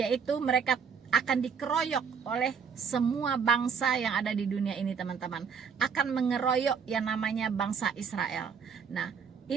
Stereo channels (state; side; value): quieter; left; 6.3 dB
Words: mereka akan dikeroyok oleh semua bangsa yang ada di dunia ini, teman-teman. Akan mengeroyok yang namanya bangsa Israel. Nah,